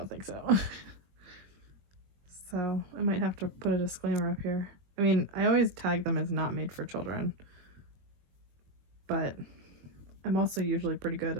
think so. So I might have to put a disclaimer up here. I mean, I always tag them as not made for children, but I'm also usually pretty good,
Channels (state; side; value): late; left; 22 ms